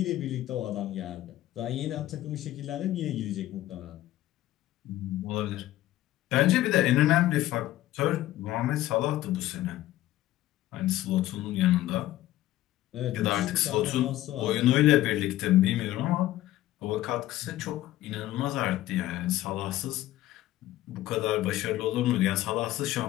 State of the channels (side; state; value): right; quieter; 15.0 dB